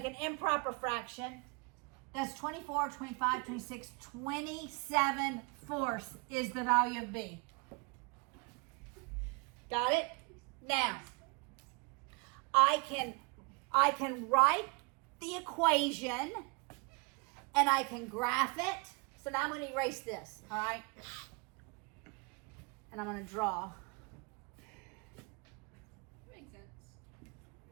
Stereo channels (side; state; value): left; quieter; 31.4 dB